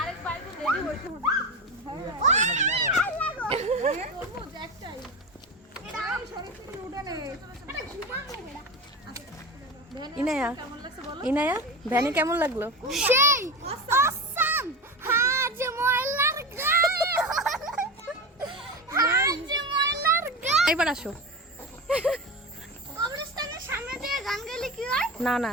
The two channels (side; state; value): both; normal; correlation 0.24